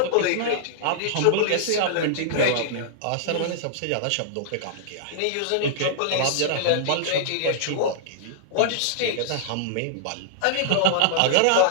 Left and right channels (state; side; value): different; both; correlation -0.01